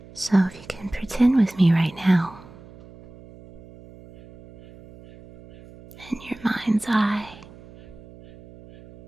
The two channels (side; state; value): right; noise; hum, 21 dB below the sound